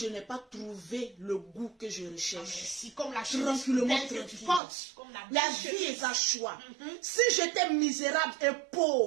n'ai pas trouvé le goût que je recherche. Si comme la chemise Tranquillement, que tu tranquille. portes, comme la La belle vie chemise. est un choix. Si j'étais misérable et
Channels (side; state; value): left; drops out; at 4.6 s